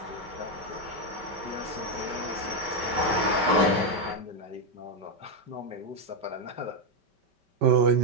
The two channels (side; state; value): left; late; 5.2 ms